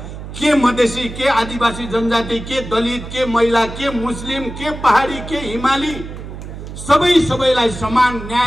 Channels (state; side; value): noise; right; hum, 11 dB below the sound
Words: के मधेसी, के आदिवासी जनजाति, के दलित, के महिला, के मुस्लिम, के पहाडी, के हिमाली, सबैलाई समान